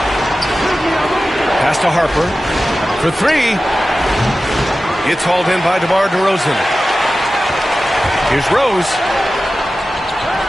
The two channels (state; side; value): normal; both; correlation 0.95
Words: Pass to Harper. For three. It's hauled in by DeMar DeRozan. Here's Rose.